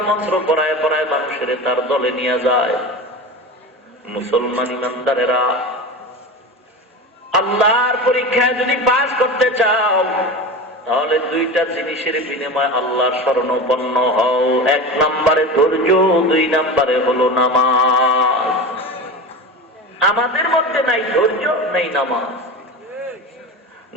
মন্ত্র পড়ায় পড়ায় মানুষের তার দলে নিয়ে যায়। মুসলমান ইমানদারেরা, আল্লাহর পরীক্ষায় যদি পাস করতে চাও, তাহলে দুইটা জিনিসের বিনিময়ে আল্লাহর শরণাপন্ন হও। এক নম্বরে ধৈর্য, দুই নম্বরে হলো নামাজ। আমাদের মধ্যে নাই ধৈর্য, নাই নামাজ।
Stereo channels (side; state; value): both; normal; correlation 0.28